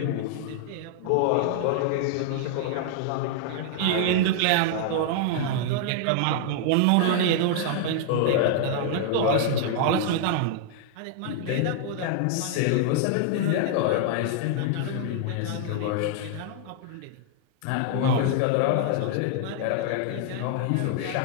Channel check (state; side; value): different; both; correlation -0.01